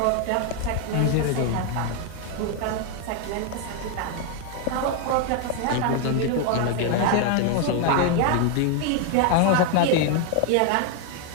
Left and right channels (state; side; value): different; both; correlation 0.01